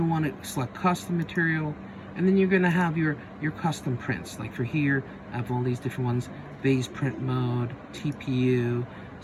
want to select custom material, and then you're going to have your custom prints. Like for here, I have all these different ones: base print mode, TPU,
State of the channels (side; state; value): both; identical; correlation 1.00